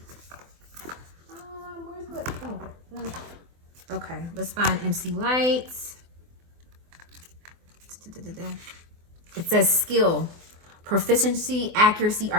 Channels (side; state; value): left; late; 24 ms